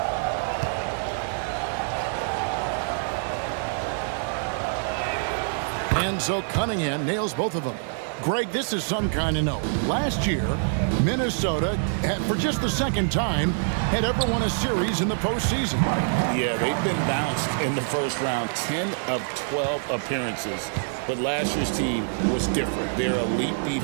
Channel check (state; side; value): silent; left; digital silence